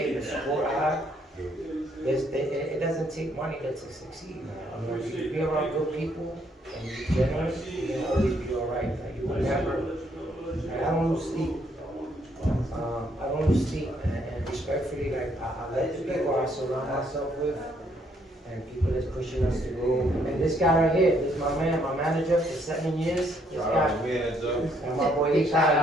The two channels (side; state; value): both; normal; correlation 0.70